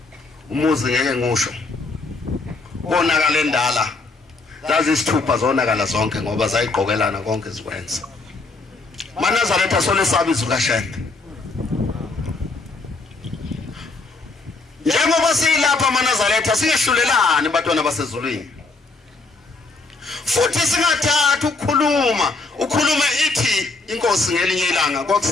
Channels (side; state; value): right; quieter; 3.6 dB